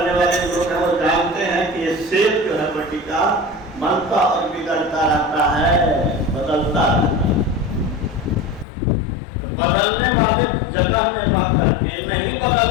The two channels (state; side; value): drops out; right; at 8.7 s